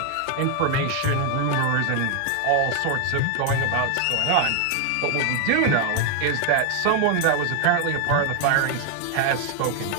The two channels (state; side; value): different; both; correlation 0.00